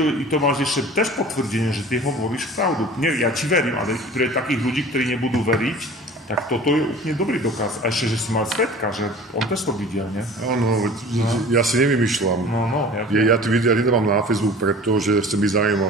To máš ešte tež potvrdenie, že ty hovoríš pravdu. Nie, ja ti verím, ale pre takých ľudí, ktorí nebudú veriť, tak toto je úplne dobrý dokaz. A ešte, že si mal svedka, že on tež to videl, nie? Áno, ja si nevymýšľam. No, ja tie videá nedávam na Facebook, pretože chcem byť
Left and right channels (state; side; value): normal; both; correlation 0.43